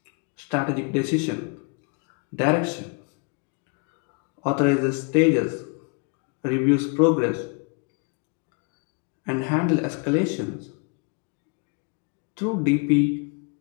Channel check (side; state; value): right; quieter; 34.7 dB